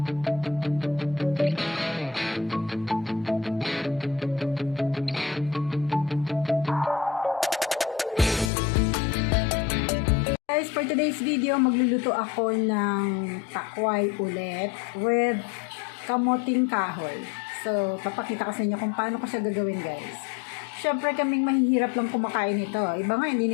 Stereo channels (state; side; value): drops out; right; at 8.5 s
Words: Guys, for today's video, magluluto ako ng takway ulit with kamoting kahoy. So, papakita ko sa inyo kung paano ko siya gagawin, guys. Siyempre, kaming mahihirap lang kumakain ito. Iba nga, hindi